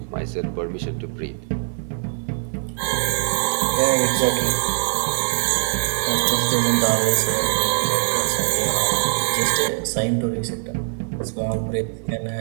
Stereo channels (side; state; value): left; silent; 64 dB below the other